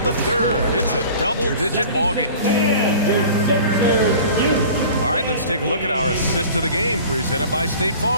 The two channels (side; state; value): both; inverted; correlation -0.42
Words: the third, it's a double-digit ballgame. All right, let's take a look at our assist of the game presented by State